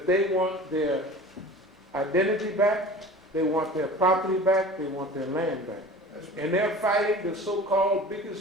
they want their identity back, they want their property back, they want their land back. And they're fighting the so-called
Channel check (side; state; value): both; normal; correlation 0.39